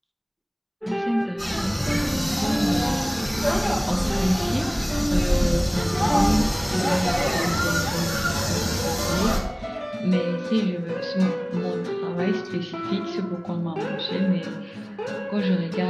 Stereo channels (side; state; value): both; identical; correlation 1.00